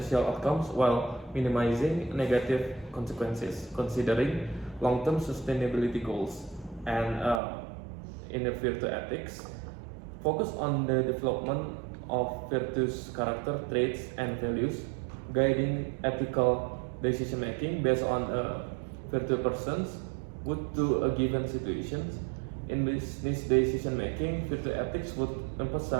outcomes while minimizing negative consequences, considering long-term sustainability goals. And in the virtue ethics, focus on the development of virtuous character traits and values, guiding ethical decision making based on virtue persons would do a given situation. In business decision making, virtue ethics would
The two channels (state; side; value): drops out; left; at 7.4 s